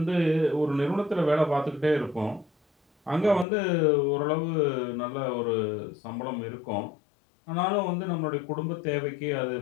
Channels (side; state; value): right; drops out; at 3.5 s